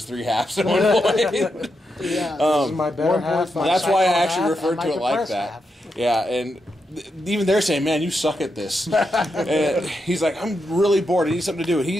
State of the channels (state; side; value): normal; both; correlation 0.85